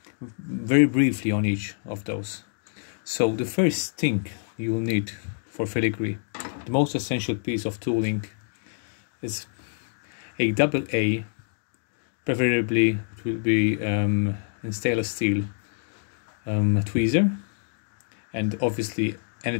very briefly on each of those. So the first thing you will need for filigree, the most essential piece of tooling, is a AA, preferably it will be in stainless steel tweezer. And obviously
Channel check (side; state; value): right; silent; 61 dB below the other